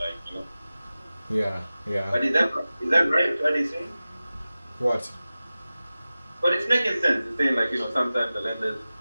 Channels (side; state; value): both; inverted; correlation -0.96